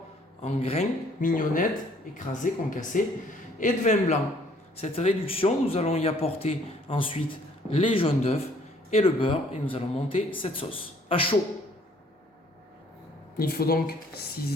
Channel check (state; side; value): normal; both; correlation 0.60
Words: en grains, mignonnettes, écrasées, concassées, et de vin blanc. Cette réduction, nous allons y apporter ensuite les jaunes d'œufs et le beurre, et nous allons monter cette sauce à chaud. Il faut donc